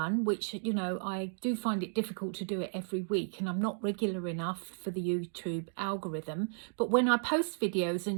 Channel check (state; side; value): silent; left; digital silence